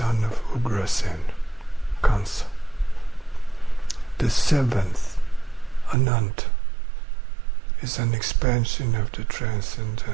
of Ugrasen, Kansa. The 7th, Ananta, is an expansion of the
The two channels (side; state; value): left; drops out; at 6.0 s